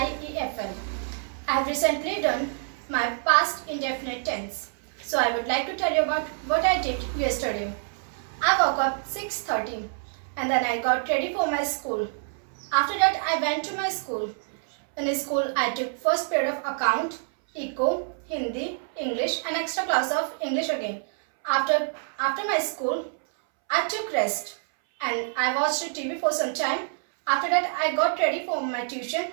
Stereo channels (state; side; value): silent; left; 60 dB below the other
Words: I have recently done my past indefinite tense. So I would like to tell you about what I did yesterday. I woke up 6:30 and then I got ready for my school. After that I went to my school. In school I took first period of account, eco, Hindi, English and extra class of English again. After my school I took rest and I watched TV for some time. After that I got ready for my tuition.